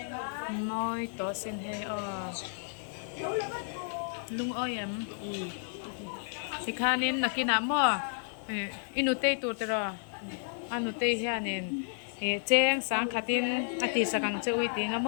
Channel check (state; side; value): silent; right; 56 dB below the other